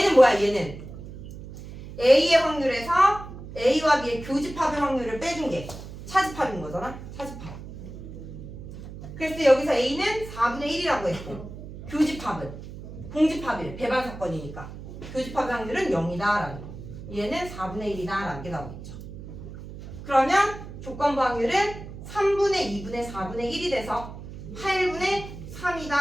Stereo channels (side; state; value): right; noise; hum, 12 dB below the sound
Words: 뭐야? 얘는 A의 확률에서 A와 B의 교집합의 확률을 빼준 게 차집합인 거잖아? 차집합. 그래서 여기서 A는 4분의 1이라고 했고 교집합은 공집합이래. 배반 사건이니까. 교집합의 확률은 0이다라는 거. 얘는 4분의 1이다라는 게 나오겠죠. 그러면 조건부 확률은 3분의 2분의 4분의 1이 돼서 8분의